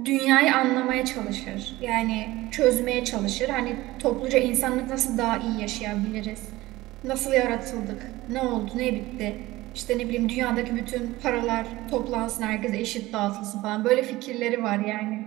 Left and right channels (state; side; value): quieter; left; 18.3 dB